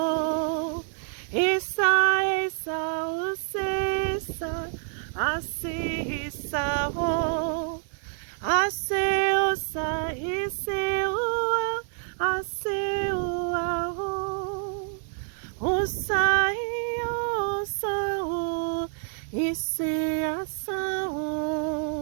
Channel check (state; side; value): silent; left; 59 dB below the other